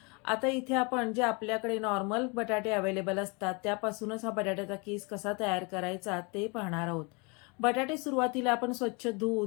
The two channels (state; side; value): quieter; right; 30.4 dB